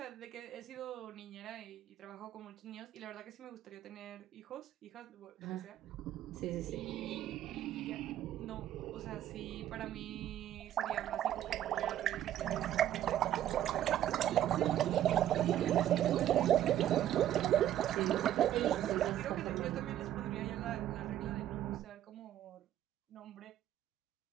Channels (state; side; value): quieter; left; 11.8 dB